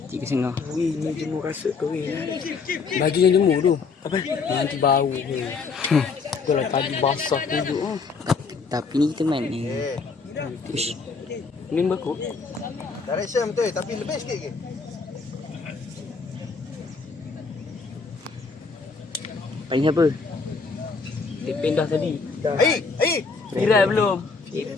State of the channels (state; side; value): quieter; right; 4.7 dB